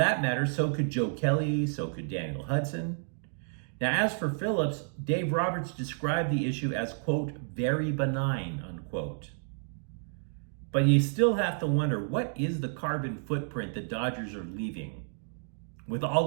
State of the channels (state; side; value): silent; left; digital silence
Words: matter, so could Joe Kelly, so could Daniel Hudson. Now, as for Phillips, Dave Roberts described the issue as, quote, very benign, unquote. But you still have to wonder, what is the carbon footprint the Dodgers are leaving? With